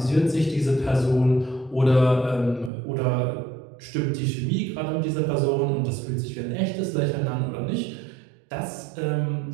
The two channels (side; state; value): left; drops out; at 2.7 s